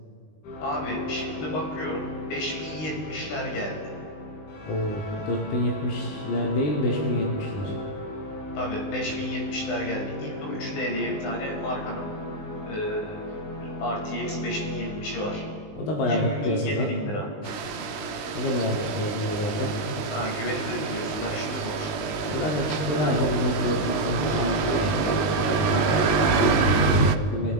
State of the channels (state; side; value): late; right; 19 ms